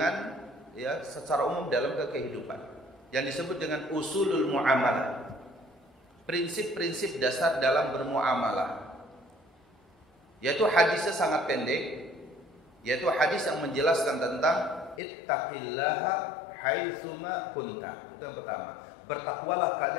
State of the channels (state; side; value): drops out; right; at 15.0 s